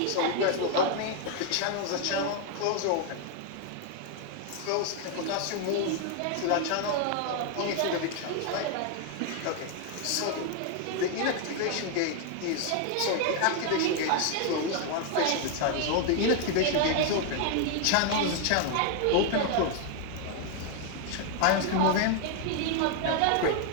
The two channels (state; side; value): different; both; correlation 0.00